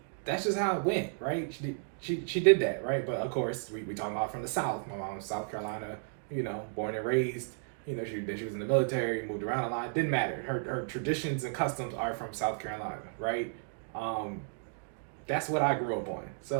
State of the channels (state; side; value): silent; left; digital silence